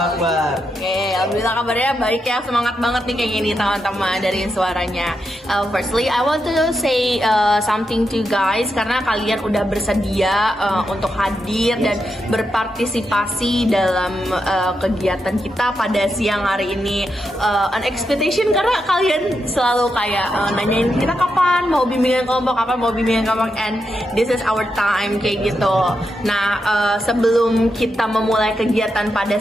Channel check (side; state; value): both; normal; correlation 0.85